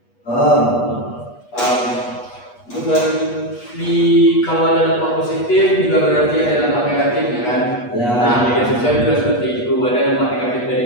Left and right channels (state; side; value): late; right; 8.3 ms